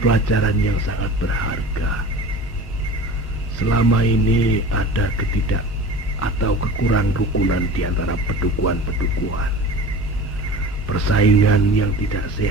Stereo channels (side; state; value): both; normal; correlation 0.37